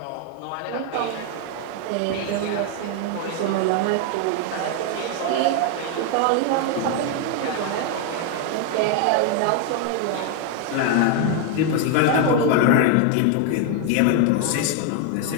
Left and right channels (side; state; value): both; different; correlation 0.00